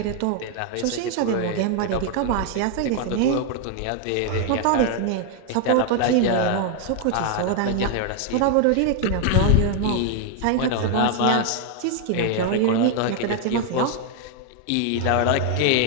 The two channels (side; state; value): both; different; correlation 0.01